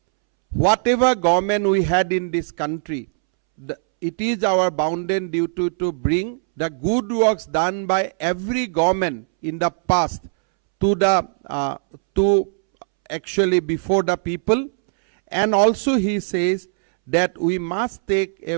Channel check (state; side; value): silent; left; 65 dB below the other